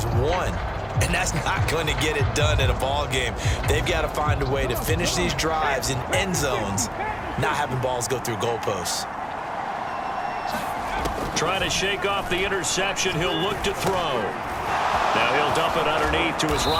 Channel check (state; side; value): identical; both; correlation 1.00